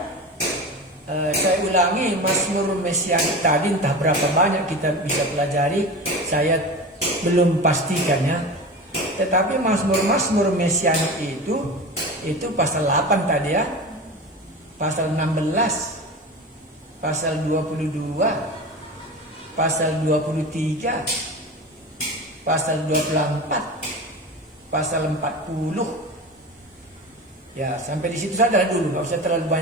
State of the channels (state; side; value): normal; both; correlation 0.29